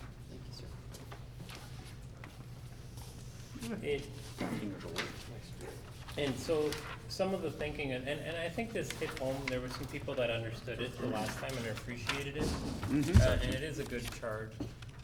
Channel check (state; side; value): identical; both; correlation 1.00